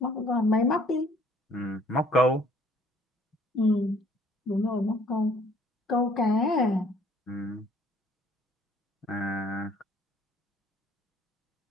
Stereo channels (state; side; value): normal; both; correlation 0.59